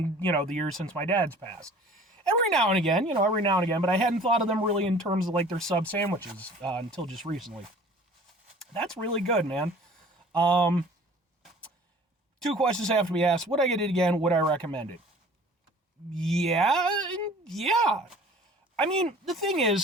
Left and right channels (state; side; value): normal; both; correlation 0.48